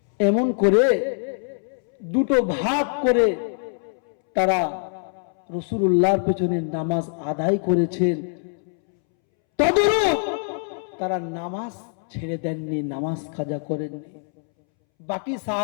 এমন করে দুটো ভাগ করে তারা রাসূলুল্লাহর পিছনে নামাজ আদায় করেছেন। তদরূপ তারা নামাজ ছেড়ে দেননি, নামাজ কাজা করেননি। বাকি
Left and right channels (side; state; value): right; silent; 63 dB below the other